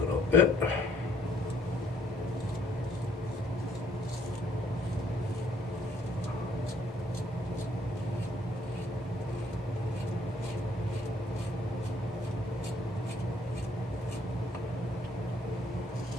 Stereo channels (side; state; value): both; normal; correlation 0.64